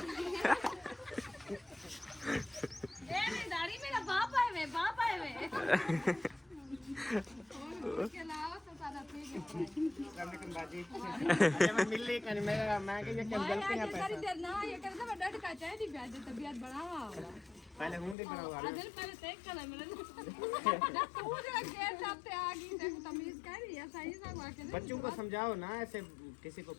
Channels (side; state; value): right; drops out; at 18.2 s